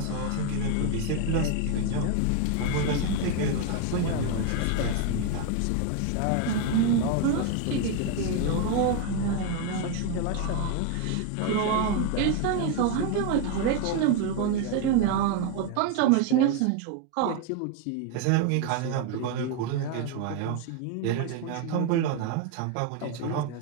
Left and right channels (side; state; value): both; different; correlation 0.01